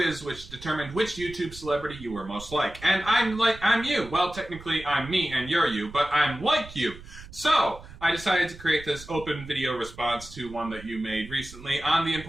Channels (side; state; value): right; noise; rumble, 17 dB below the sound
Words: which determined which YouTube celebrity you were most like. And I'm you. Well, technically I'm me and you're you, but I'm like you. So, I decided to create this open video response to one that you made recently on the